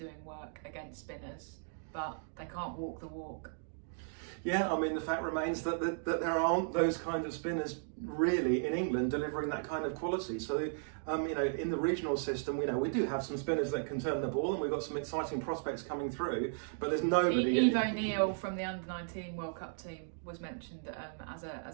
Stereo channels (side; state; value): left; silent; digital silence